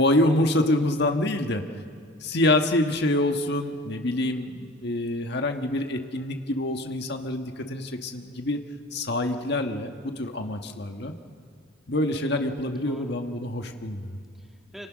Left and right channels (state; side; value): normal; both; correlation 0.41